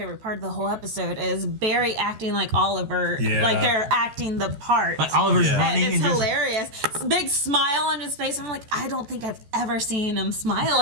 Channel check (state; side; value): late; left; 14 ms